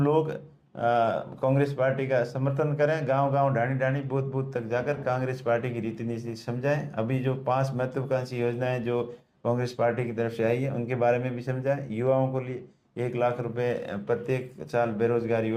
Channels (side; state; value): both; identical; correlation 1.00